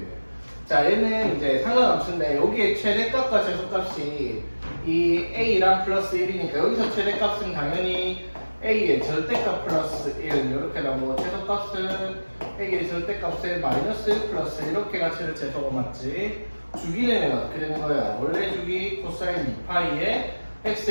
자, 얘는 이제 상관함수인데 여기에 최대값과 최소값이 이 a랑 플러스 1이니까 여기서 최대값은 당연히 a의 절대값 플러스 1 이렇게 나오고 최소값은 a의 절대값의 마이너스 1 플러스 이렇게 가치를 재서가 맞지. 주기는 어떻게 되는 거야? 원래 주기 코사인 2파이에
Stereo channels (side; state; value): both; inverted; correlation -1.00